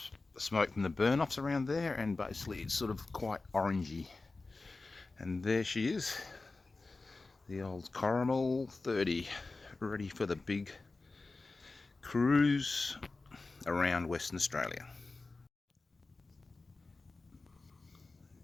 smoke from the burn-offs around there, and basically it's sort of quite orangey. And there she is, the old Caramel 30, ready for the big cruise around Western Australia.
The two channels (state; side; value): quieter; right; 3.6 dB